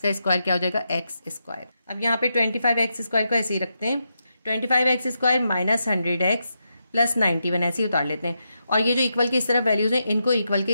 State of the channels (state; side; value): inverted; both; correlation -0.85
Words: स्क्वायर क्या हो जाएगा x²। अब यहाँ पे 25x² को ऐसे ही रखते हैं, 25x² माइनस 100x प्लस 91 ऐसे ही उतार लेते हैं। और ये जो इक्वल के इस तरफ वैल्यूज हैं इनको इक्वल के